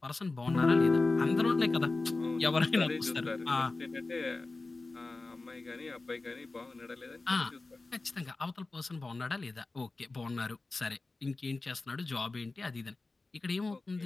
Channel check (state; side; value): quieter; right; 3.4 dB